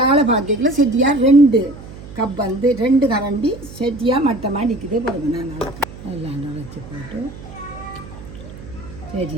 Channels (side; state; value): right; noise; hum, 15 dB below the sound